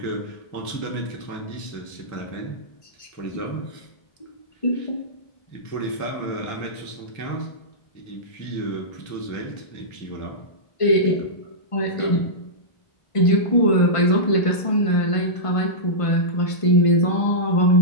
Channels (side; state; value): right; late; 1.5 ms